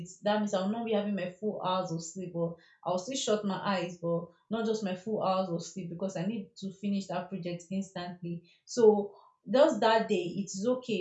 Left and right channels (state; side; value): identical; both; correlation 1.00